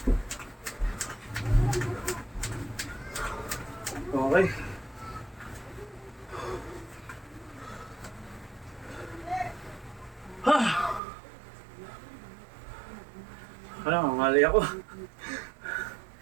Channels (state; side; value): drops out; left; at 11.0 s